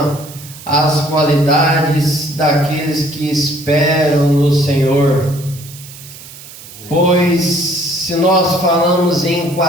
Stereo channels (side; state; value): right; noise; hiss, 17 dB below the sound